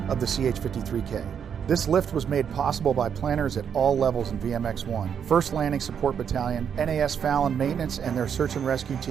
of the CH-53K. This lift was made possible by planners at all levels in VMX-1, 1st Landing Support Battalion, NAS Fallon Maintenance and their Search and Rescue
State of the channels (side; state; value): left; quieter; 7.8 dB